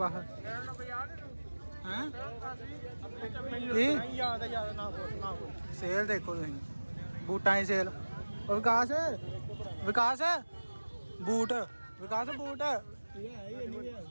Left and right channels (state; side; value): inverted; both; correlation -1.00